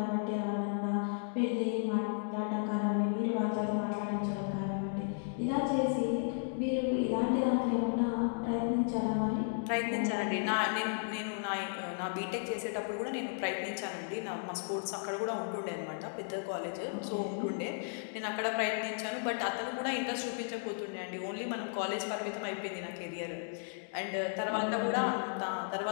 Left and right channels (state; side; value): silent; right; digital silence